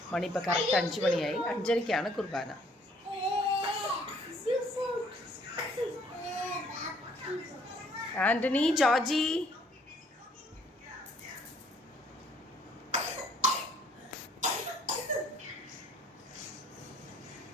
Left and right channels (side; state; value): both; normal; correlation 0.61